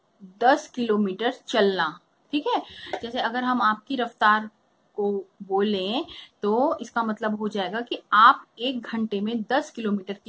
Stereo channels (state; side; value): identical; both; correlation 1.00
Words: 10 किलोमीटर चलना। ठीक है, जैसे अगर हम आपकी रफ्तार को बोलें तो इसका मतलब हो जाएगा कि आप 1 घंटे में 10 किलोमीटर